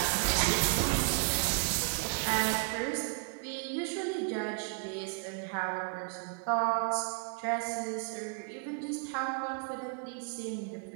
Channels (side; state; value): left; quieter; 35.1 dB